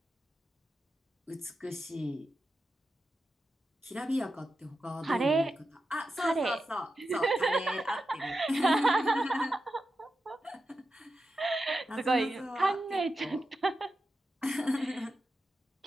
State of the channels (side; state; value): both; normal; correlation 0.90